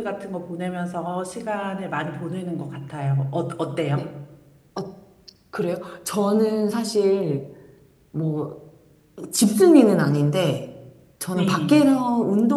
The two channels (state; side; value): identical; both; correlation 1.00